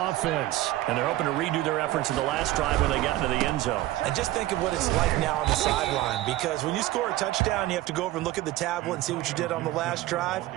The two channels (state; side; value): quieter; left; 16.1 dB